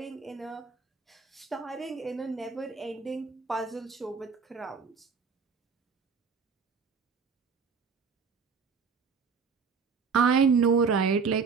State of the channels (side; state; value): left; quieter; 5.4 dB